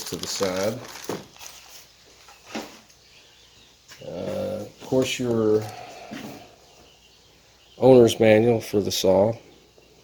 to the side. Of course, your owner's manual for the saw.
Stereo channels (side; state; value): both; identical; correlation 1.00